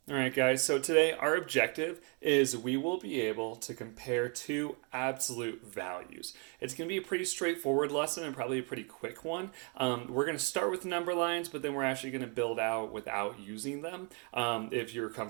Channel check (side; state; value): left; quieter; 36.0 dB